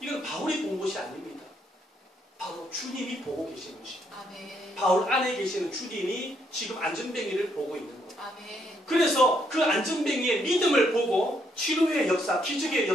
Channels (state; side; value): normal; both; correlation 0.73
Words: 바울이 본 것이 아닙니다. 바로 주님이 보고 계시는 것입니다. 바울 안에 계시는 주님이 지금 안전뱅이를 보고 있는 거예요. 그래서 그 안전뱅이의 믿음을 보고 치료의 역사, 기적의